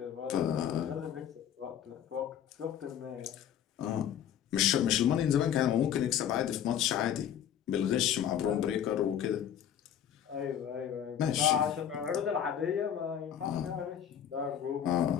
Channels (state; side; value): quieter; right; 9.5 dB